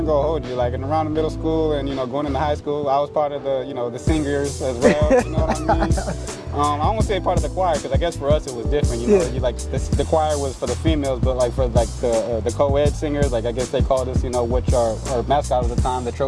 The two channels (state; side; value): identical; both; correlation 1.00